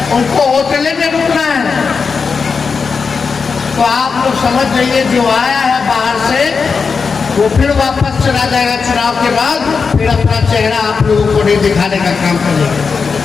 उनको होटल में रुकना है। तो आप लोग समझ जाइए जो आया है बाहर से वो फिर वापस चला जाएगा चुनाव के बाद, फिर अपना चेहरा आप लोगों को नहीं दिखाने का काम करेगा।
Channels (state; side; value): quieter; right; 5.2 dB